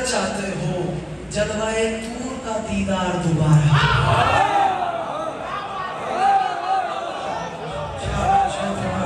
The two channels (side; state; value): both; identical; correlation 1.00